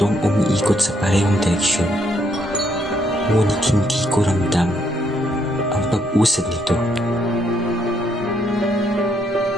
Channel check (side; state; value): both; normal; correlation 0.73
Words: umiikot sa parehong direksyon. Ngunit hindi ko ramdam ang pag-usad nito.